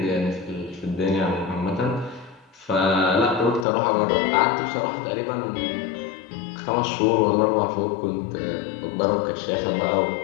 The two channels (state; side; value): drops out; right; at 3.7 s